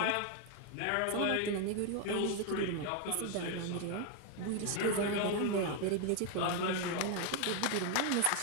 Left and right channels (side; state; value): both; different; correlation 0.01